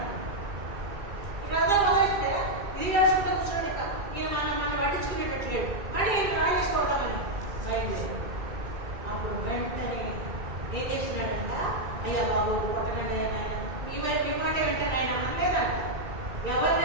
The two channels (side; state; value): left; late; 2.3 ms